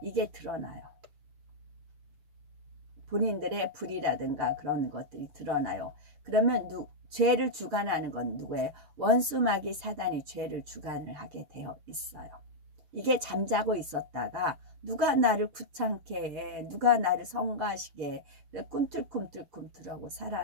이게 드러나요. 본인들의 불이라든가 그런 것들이 드러나요. 그러면 죄를 주관하는 건 누구예요? 원수마귀 사단이 죄를 주관을 하게 되어 있어요. 이게 잠자고 있었다가 누가 나를 귀찮게 해, 누가 나를 성가시게 해, 꿈틀꿈틀꿈틀하고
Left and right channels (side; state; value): left; late; 6.7 ms